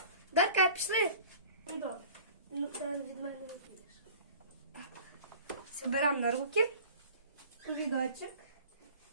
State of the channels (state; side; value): inverted; both; correlation -0.45